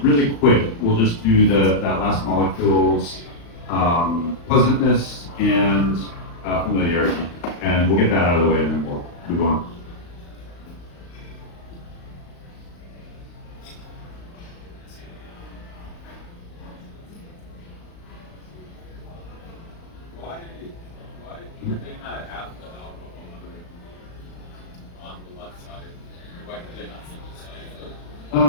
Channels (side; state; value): right; late; 35 ms